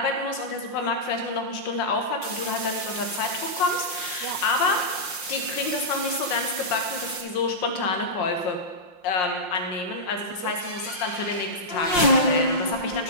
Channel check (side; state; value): right; late; 5.6 ms